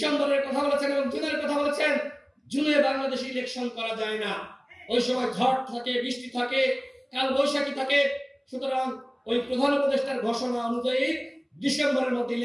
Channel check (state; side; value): identical; both; correlation 1.00